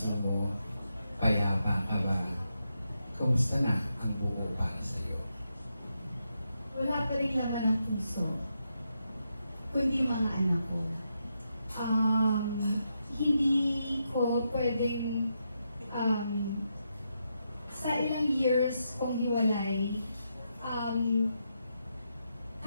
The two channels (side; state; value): both; inverted; correlation -0.83